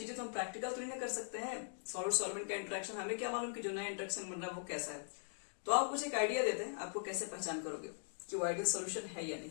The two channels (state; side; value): silent; right; digital silence